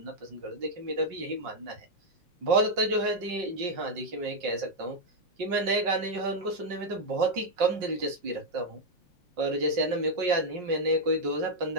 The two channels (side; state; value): left; late; 5.5 ms